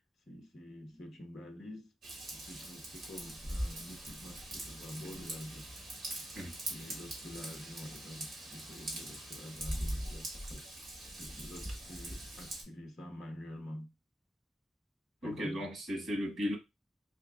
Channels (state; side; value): normal; both; correlation 0.86